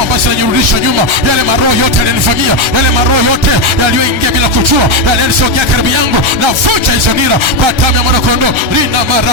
ambazo zinanirudisha nyuma. Yale maroho yote yalinifamia, yale maroho yote yaliyoingia bila kujua, yale yalisogea karibu yangu, navunja hizo nira kwa damu ya mwanakondoo. Rina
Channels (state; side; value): late; left; 1.4 ms